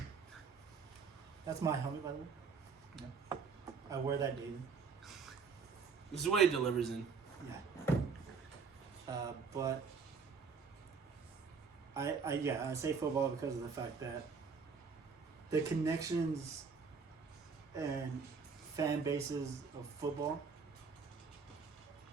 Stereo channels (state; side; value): quieter; left; 5.4 dB